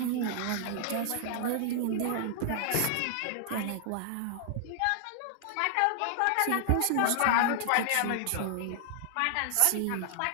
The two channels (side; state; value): both; different; correlation 0.00